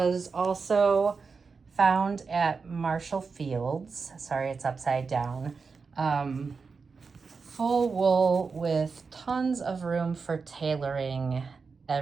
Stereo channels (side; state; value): left; quieter; 4.9 dB